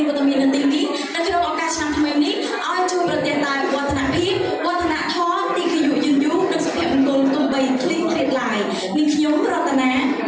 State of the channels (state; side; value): identical; both; correlation 1.00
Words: នវត្តមាននៅទីនេះនៅក្នុងឱកាសឆ្នាំថ្មីនេះឲ្យជួយប្រទានតែវឌ្ឍនភាពវឌ្ឍនធម៌ទីគយុយឺនយូរនិងសុភមង្គលទំបីឃ្លីឃ្លាតឡាយនាងខ្ញុំរតនា